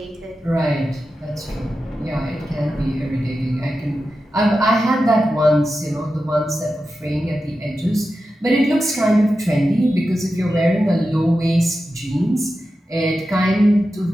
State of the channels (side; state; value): both; normal; correlation 0.91